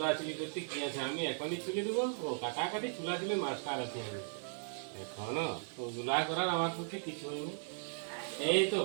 করতে কি আছে, আমি এখনই চুলি দেবো। ও কাটাকাটি চুলাচুলি মাস্টার আছি আমি এখনো, ওগুলা করার আমার পক্ষে কিছু হয়নি। এই তো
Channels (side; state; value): left; silent; digital silence